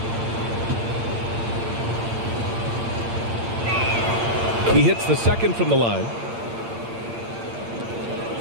He hits the second from the line.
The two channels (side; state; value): left; late; 8.7 ms